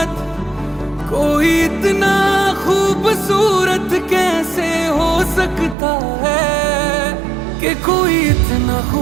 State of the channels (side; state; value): left; drops out; at 5.8 s